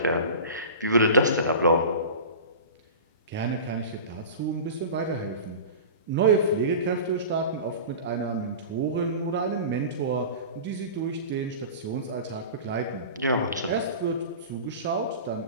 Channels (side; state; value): both; inverted; correlation -0.34